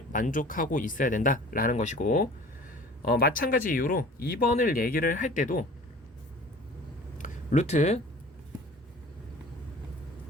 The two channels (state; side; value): normal; both; correlation 0.45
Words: 만족하고 있어야 된다 라는 것이고, 마찬가지 이유로 2번을 얘기를 할 때도 루트